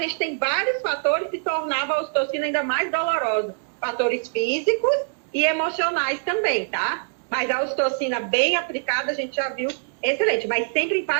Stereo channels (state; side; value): silent; left; digital silence